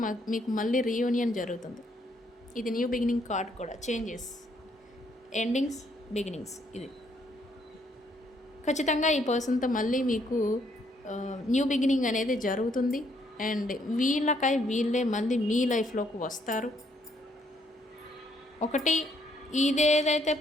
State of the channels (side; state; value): both; normal; correlation 0.70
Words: మీకు మళ్ళీ రీయూనియన్ జరుగుతుంది. ఇది న్యూ బిగినింగ్ కార్డ్ కూడా, చేంజెస్, ఎండింగ్స్, బిగినింగ్స్. ఇది ఖచ్చితంగా ఈ పర్సన్తో మళ్ళీ మీకు న్యూ బిగినింగ్ అనేది జరుగుతుంది. అండ్ వీళ్ళే మళ్ళీ మీ లైఫ్లోకి వస్తారు. ఒకటి, ఇదేదైతే